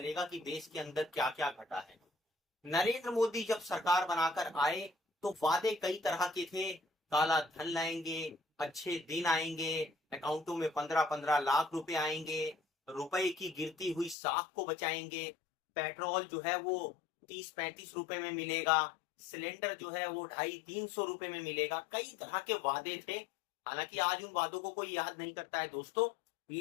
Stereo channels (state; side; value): drops out; right; at 14.2 s